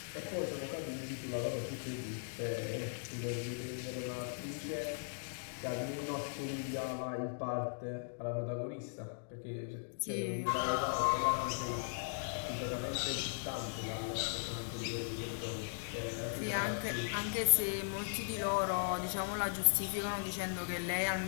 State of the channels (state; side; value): silent; right; digital silence